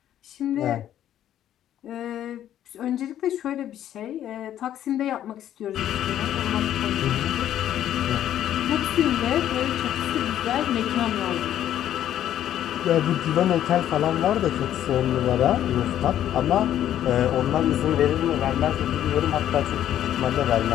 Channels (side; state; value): right; quieter; 11.4 dB